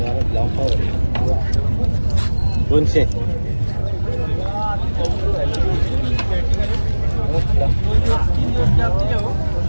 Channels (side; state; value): both; inverted; correlation -1.00